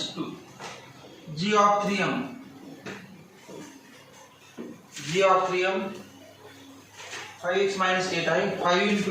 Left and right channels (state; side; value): identical; both; correlation 1.00